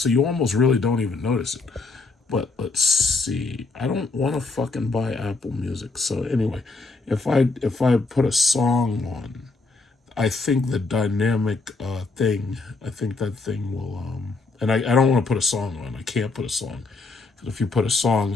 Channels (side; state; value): right; quieter; 3.7 dB